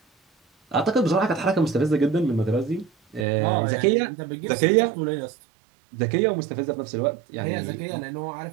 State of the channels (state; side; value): drops out; left; at 3.2 s